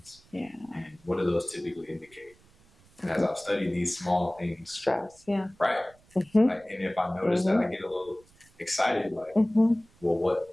Yeah. And what do those typically indicate? And as I've studied these small things, stress, right? Like, and if I notice that I get a little excited, like, well, what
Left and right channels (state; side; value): noise; right; rumble, 30 dB below the sound